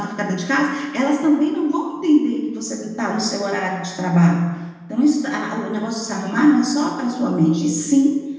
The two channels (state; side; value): identical; both; correlation 1.00